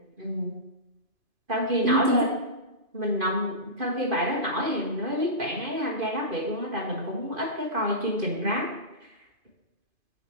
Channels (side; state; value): left; late; 2.5 ms